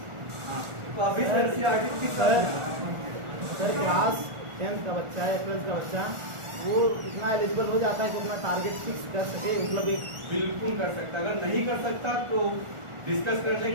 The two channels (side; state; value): left; late; 1.4 ms